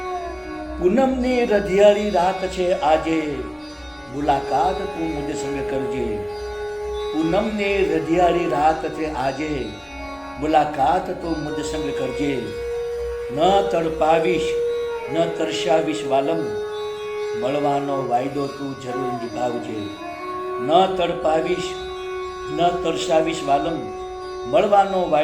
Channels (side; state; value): both; identical; correlation 1.00